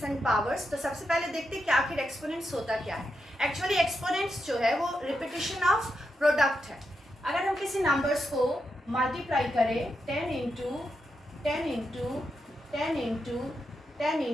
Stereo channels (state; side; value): normal; both; correlation 0.85